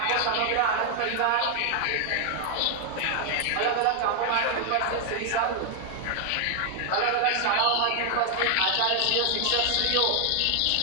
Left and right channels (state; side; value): different; both; correlation 0.00